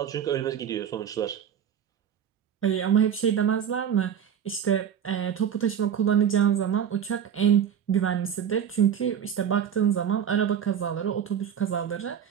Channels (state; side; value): quieter; left; 8.6 dB